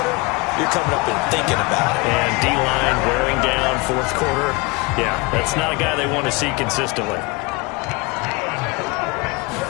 you're coming up and thinking about it. And D-line wearing down 4th quarter. Yeah, that's not a guy they want to see consistently.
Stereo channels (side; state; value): right; quieter; 26.2 dB